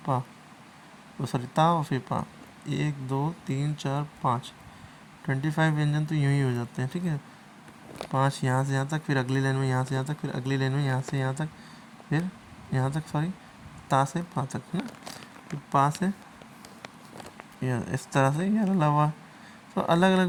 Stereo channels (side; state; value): both; identical; correlation 1.00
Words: पा, तो सॉरी ता और फिर पा। 1 2 3 4 5, 25 व्यंजन तो यूँ ही हो जाते हैं, ठीक है। 5 यहाँ से यहाँ तक, फिर अगली लाइन में यहाँ से यहाँ तक, फिर अगली लाइन में यहाँ से यहाँ तक, फिर यहाँ तक, सॉरी ता से पा तक, है ना। फिर पा से इस तरह से यार अलावा। तो अलग